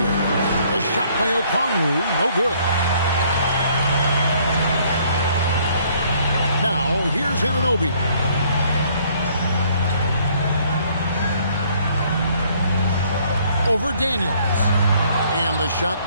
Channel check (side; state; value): both; inverted; correlation -0.63